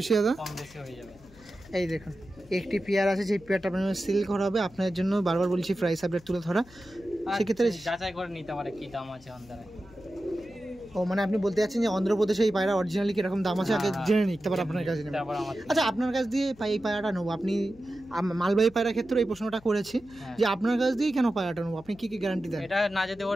দাদা? কম বেশি হয়ে যাবে। এই দেখুন একটি পেয়ার আছে, যে পেয়ারটা আপনার সেল করা হবে। আপনার জন্য বারবার বলছি প্রাইস আপডেট তুলে ধরা, সেক্ষেত্রে যাচাই করে নিতে পারে কি দাম আছে অন্ধ্রায়। ও মানে আপনি বলতে যাচ্ছেন যে অন্ধ্রপ্রদেশে এই পায়রা অরিজিনালি কিরকম দাম আছে আগে জেনে নিই, তারপর আপনার কাছে নেব। আচ্ছা আপনার কাছ দিয়ে এই পায়রাটা নেবো, আপনি মালবাহী পায়রা ক্ষেত্রে এই প্রশ্নটা করেছি যে আপনার কাছ দিয়ে কেন পায়রাটা নেবো, আপনি কি কি গ্যারান্টি দেন? এটা না যদি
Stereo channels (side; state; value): left; noise; hum, 24 dB below the sound